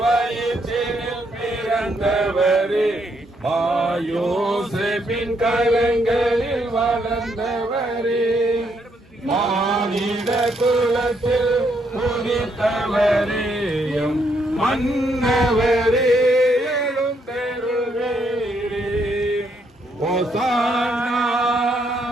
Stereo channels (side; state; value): both; normal; correlation 0.74